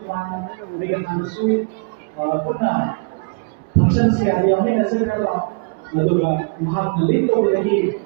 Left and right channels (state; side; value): quieter; left; 33.2 dB